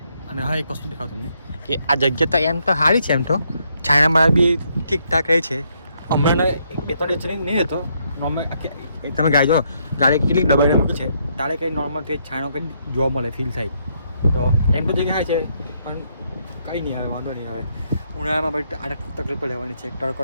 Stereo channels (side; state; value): both; inverted; correlation -0.74